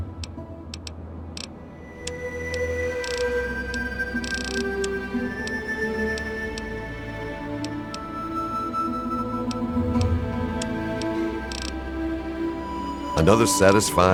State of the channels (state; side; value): identical; both; correlation 1.00